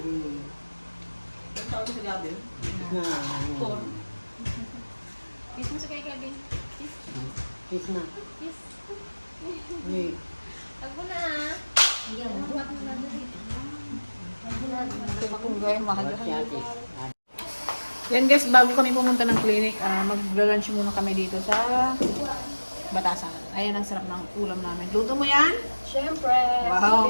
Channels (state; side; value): inverted; both; correlation -1.00